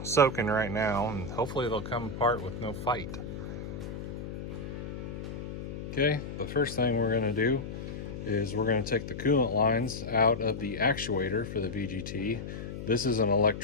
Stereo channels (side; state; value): left; noise; hum, 8 dB below the sound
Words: soaking right now, and hopefully they'll come apart with no fight. Okay, the first thing we're gonna do is we're gonna take the coolant lines out of the actuator for the VGT. This is an